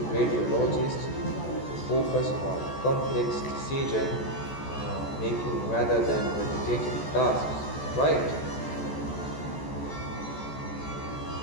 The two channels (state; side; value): late; right; 14 ms